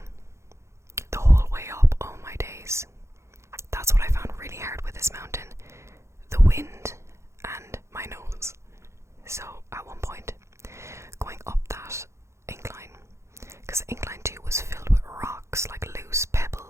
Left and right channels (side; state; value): left; late; 0.14 ms